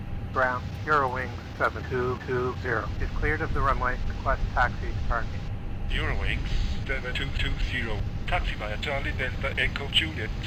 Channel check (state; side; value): identical; both; correlation 1.00